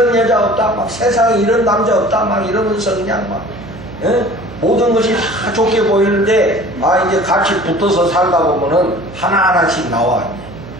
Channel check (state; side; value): noise; right; hum, 15 dB below the sound